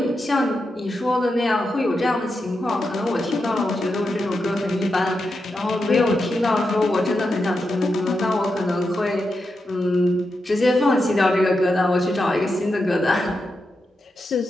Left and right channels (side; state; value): both; normal; correlation 0.87